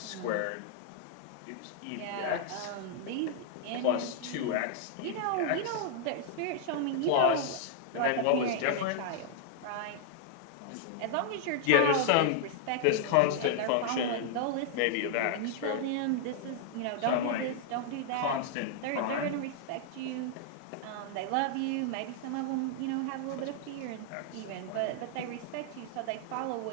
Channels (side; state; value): both; different; correlation 0.00